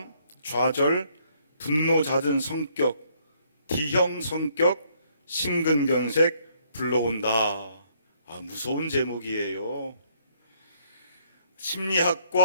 좌절, 분노 잦은 성격, D형 성격, 심근경색 불러온다. 무서운 제목이에요.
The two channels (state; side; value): inverted; both; correlation -0.68